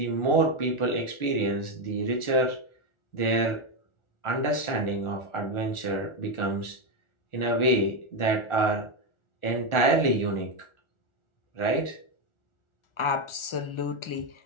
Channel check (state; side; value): late; right; 1.4 ms